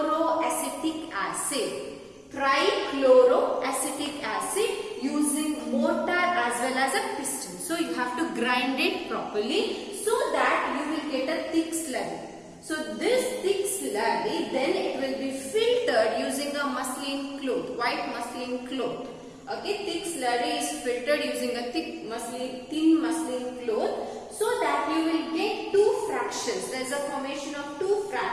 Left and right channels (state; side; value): identical; both; correlation 1.00